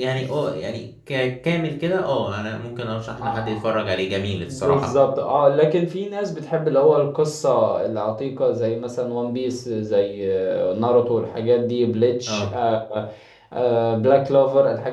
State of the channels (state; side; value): identical; both; correlation 1.00